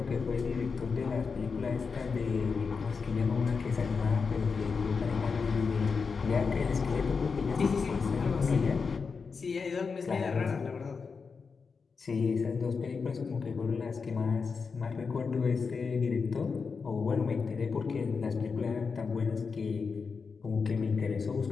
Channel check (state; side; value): quieter; right; 5.2 dB